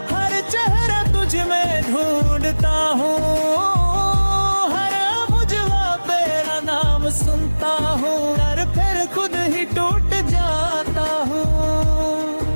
हर चेहरा तुझ में ढूंढता हूँ, हर बुझवा तेरा नाम सुनता हूँ और फिर खुद ही टूट जाता हूँ।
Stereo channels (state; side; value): inverted; both; correlation -1.00